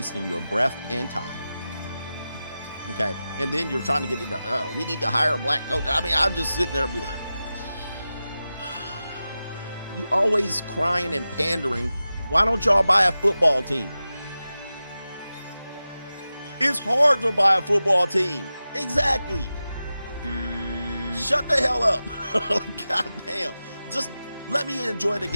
your breath and time. Okay. And then you're trying to get into, we need to hire a black coach. I mean, I'm just sitting there and be like, you always crying and pandering. Why don't y'all buy a football team? It's hard to buy a football team. Exactly. Shut the hell up. God damn. Just let me enjoy the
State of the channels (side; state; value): both; inverted; correlation -0.94